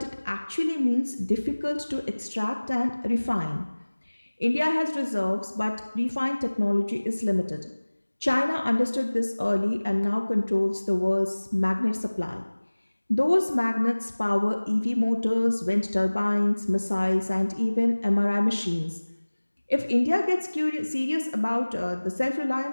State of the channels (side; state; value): both; inverted; correlation -1.00